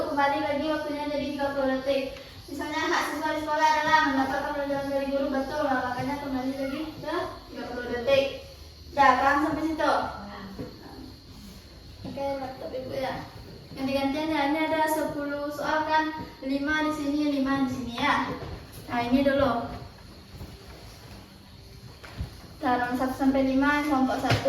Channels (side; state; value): both; identical; correlation 1.00